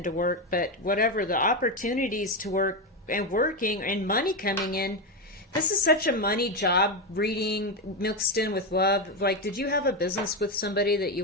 work, but whatever the opportunities to work and working and money coming in, this is such a money job reading mixed in with love. Like, did you have a business with somebody that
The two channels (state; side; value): normal; both; correlation 0.11